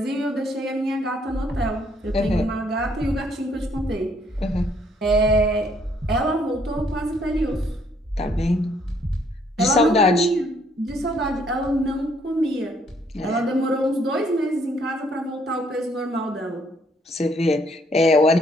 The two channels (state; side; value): normal; both; correlation 0.67